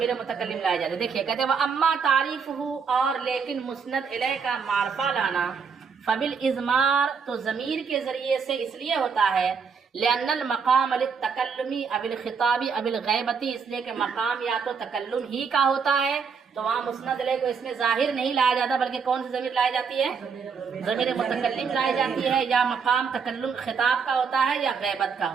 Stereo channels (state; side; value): quieter; left; 5.9 dB